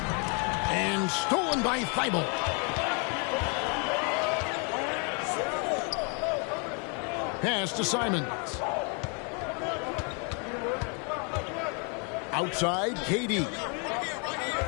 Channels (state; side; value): quieter; right; 36.6 dB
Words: And stolen by Thibault. Pass to Simons. Outside, KD.